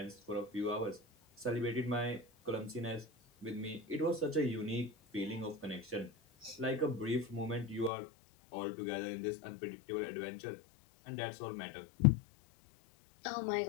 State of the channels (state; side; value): drops out; right; at 7.9 s